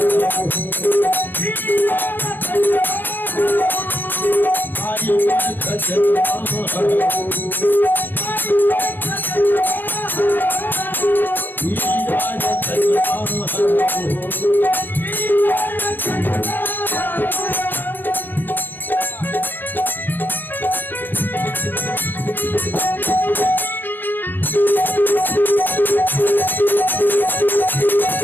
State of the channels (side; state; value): right; late; 0.094 ms